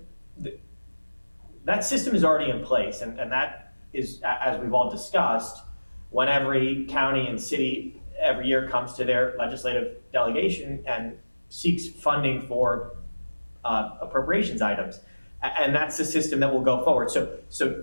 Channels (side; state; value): both; inverted; correlation -1.00